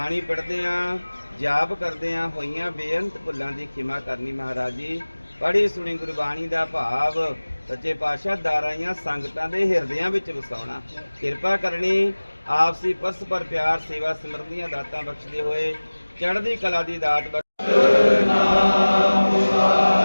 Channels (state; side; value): inverted; both; correlation -1.00